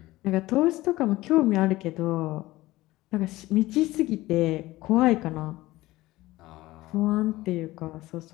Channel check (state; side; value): quieter; right; 18.1 dB